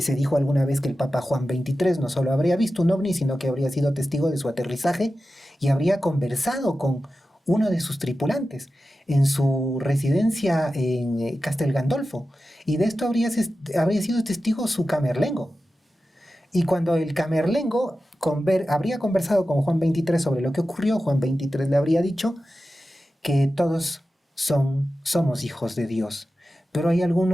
dijo alguna vez que el Papa Juan XXIII no solo habría visto un ovni, sino que habría sido testigo de su aterrizaje y habría conversado con uno de sus tripulantes en su residencia en Castel Gandolfo. Y de esto habría sido testigo su camerlengo. Y cuando el camerlengo habría conversado con Juan XXIII sobre lo que ocurrió, Juan XXIII le habría dicho que todos somos hijos de Dios, pero hay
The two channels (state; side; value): normal; both; correlation 0.93